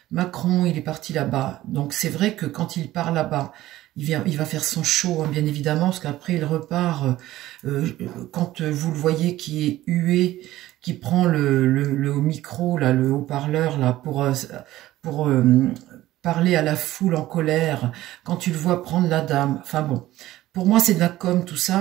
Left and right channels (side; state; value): left; quieter; 15.4 dB